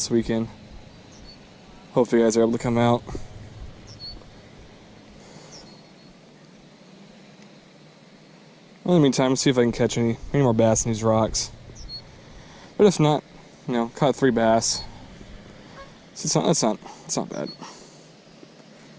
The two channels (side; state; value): both; identical; correlation 1.00